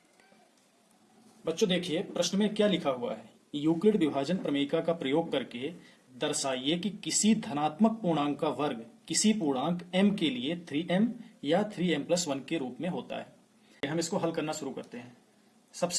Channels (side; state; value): both; identical; correlation 1.00